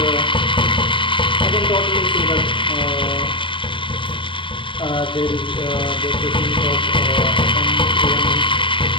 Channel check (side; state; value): right; late; 0.24 ms